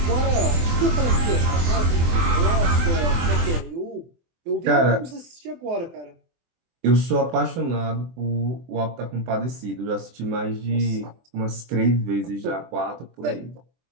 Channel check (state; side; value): late; left; 24 ms